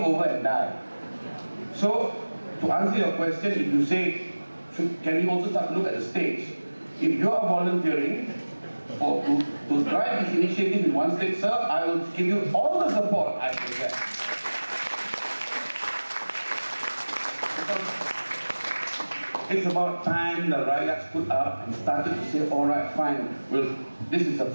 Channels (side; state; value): both; inverted; correlation -1.00